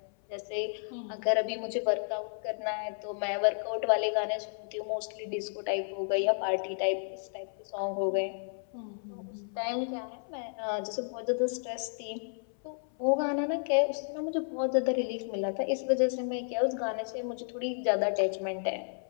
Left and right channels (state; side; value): silent; right; 56 dB below the other